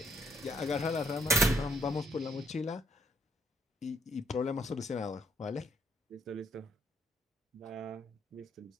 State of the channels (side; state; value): both; normal; correlation 0.70